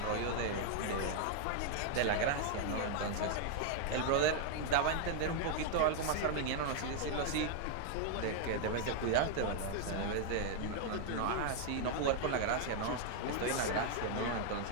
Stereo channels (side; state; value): both; different; correlation 0.00